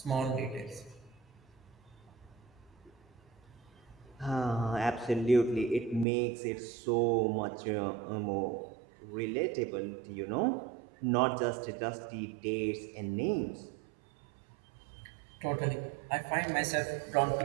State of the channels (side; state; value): left; drops out; at 6.1 s